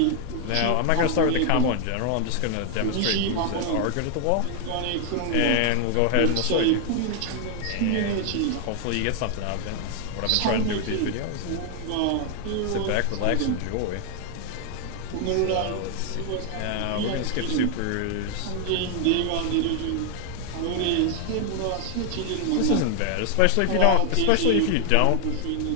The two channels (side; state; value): both; different; correlation 0.00